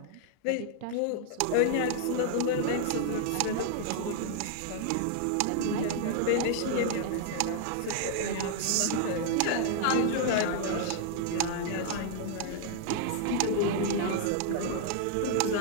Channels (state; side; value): different; both; correlation -0.01